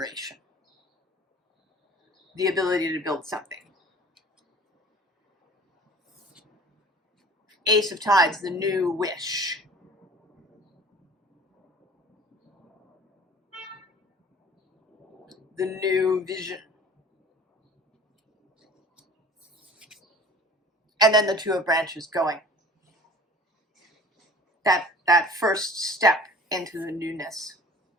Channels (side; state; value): both; normal; correlation 0.46